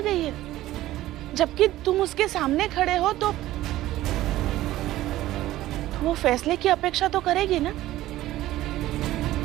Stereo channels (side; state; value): left; quieter; 15.4 dB